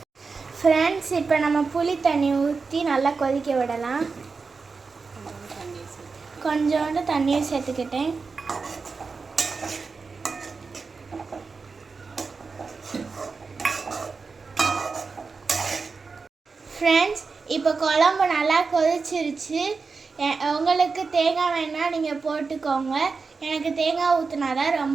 ஃப்ரெண்ட்ஸ், இப்போ நம்ம புளி தண்ணி ஊற்றி நல்லா கொதிக்க விடலாம். கொஞ்சோண்டு தண்ணியும் சேர்த்துக்கிட்டேன். ஃப்ரெண்ட்ஸ், இப்போ குழம்பு நல்லா கொதிச்சிருச்சு. உங்களுக்கு தேங்காய் வேணால் நீங்கள் போட்டுக்கோங்க. எனக்கு தேங்காய் ஊற்றினா தான்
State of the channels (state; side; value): quieter; left; 4.6 dB